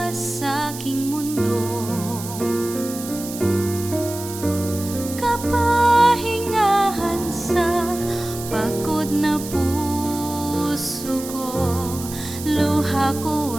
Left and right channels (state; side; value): noise; right; hiss, 11 dB below the sound